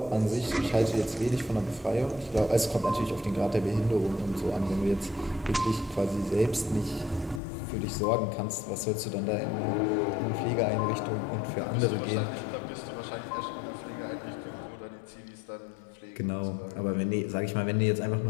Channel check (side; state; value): right; drops out; at 7.4 s